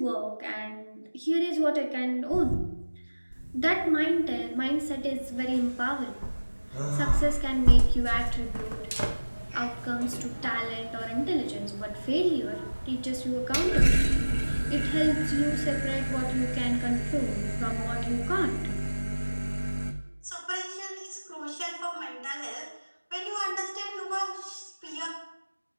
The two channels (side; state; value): both; inverted; correlation -1.00